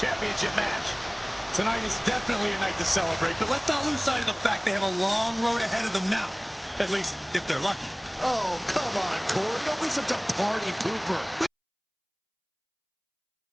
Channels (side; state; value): both; identical; correlation 1.00